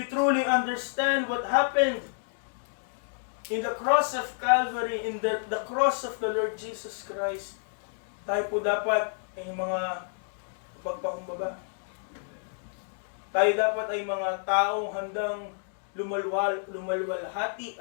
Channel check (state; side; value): silent; right; digital silence